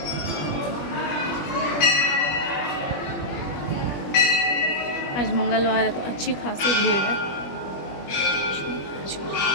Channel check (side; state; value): right; late; 21 ms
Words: आज मंगलवार है तो अच्छी खासी भीड़ है।